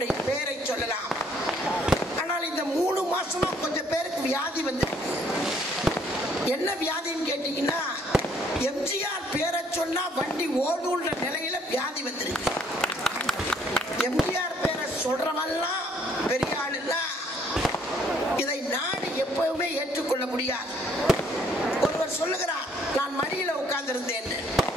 பெயரை சொல்லலாம். ஆனால் இந்த 3 மாசமா கொஞ்சம் பேருக்கு வியாதி வந்து, என்ன வியாதின்னு கேட்டீங்கன்னா, எம்ஜிஆர் பேரை சொன்னா வண்டி ஓடுன்ற நிலையில வியாதி வந்திருக்கு. எம்ஜிஆர் பேரை சொல்றவெல்லாம் பெரிய ஆளுன்னா இதை நாடு எப்பவுமே ஏற்றுக்கொள்ள முடியாது. ஒருவர் சொல்லுகிறார், நான் மடியில உட்கார்ந்திருந்தேன்.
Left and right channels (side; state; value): both; normal; correlation 0.64